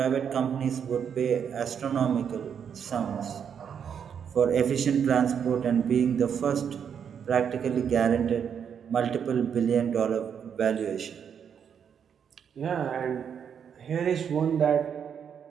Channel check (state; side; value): quieter; left; 7.7 dB